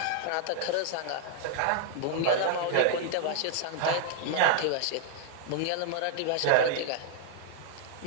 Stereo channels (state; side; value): different; both; correlation -0.01